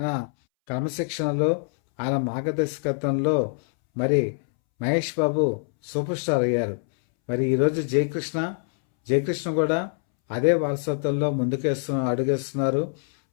క్రమశిక్షణలో, ఆయన మార్గదర్శకత్వంలో మరి మహేష్ బాబు సూపర్ స్టార్ అయ్యారు. మరి ఈరోజు జయకృష్ణ కూడా అదే వారసత్వంలో అడుగేస్తున్నారు.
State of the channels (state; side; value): silent; right; 62 dB below the other